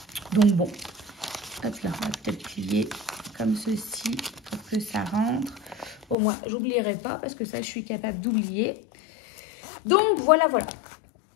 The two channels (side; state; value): right; drops out; at 6.2 s